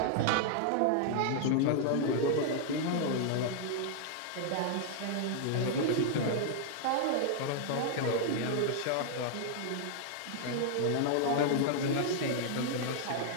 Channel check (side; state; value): both; different; correlation -0.01